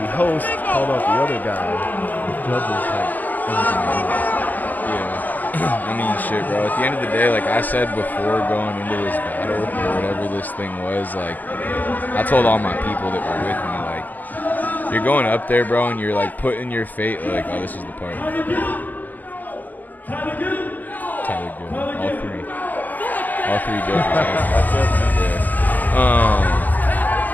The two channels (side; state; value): right; late; 0.083 ms